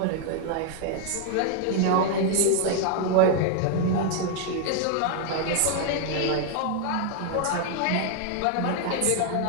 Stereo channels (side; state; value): both; different; correlation 0.00